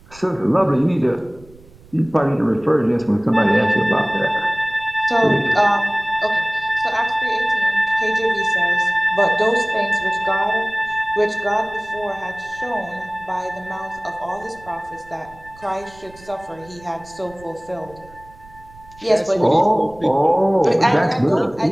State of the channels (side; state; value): right; noise; rumble, 23 dB below the sound